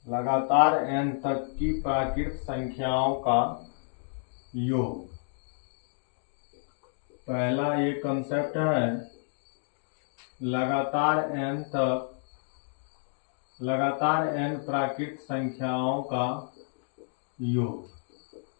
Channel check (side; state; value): right; silent; digital silence